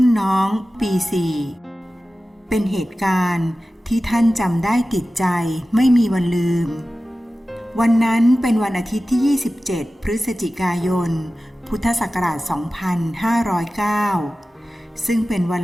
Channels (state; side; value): normal; both; correlation 0.95